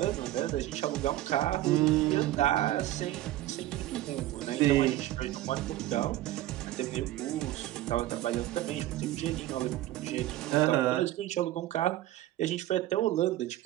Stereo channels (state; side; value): quieter; left; 14.9 dB